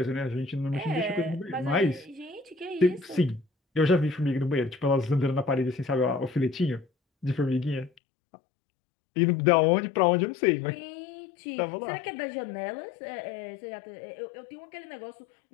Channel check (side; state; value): right; drops out; at 7.9 s